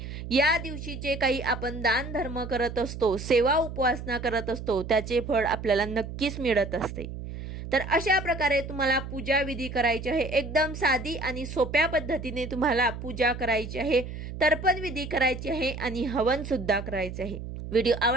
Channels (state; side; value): noise; right; hum, 9 dB below the sound